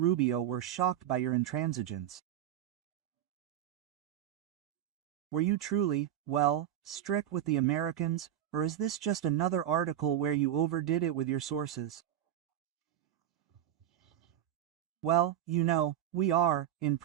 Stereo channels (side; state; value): left; quieter; 11.2 dB